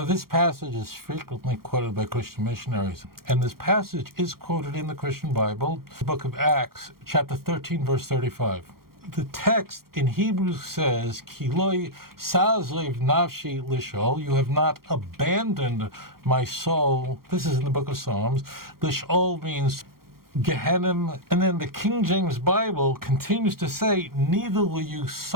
This passage is frequently quoted by Christian missionaries, and this passage is quoted in the Christian Bible, the book of Acts, chapter 13, verse 35. The text in Hebrew says, Ki lo sa'azev nafshi lishol, you have not abandoned my soul. This is in the book of Psalms. Lishol means Gehenna, and then the King James Bible continues to say, neither will you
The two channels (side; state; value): left; late; 0.93 ms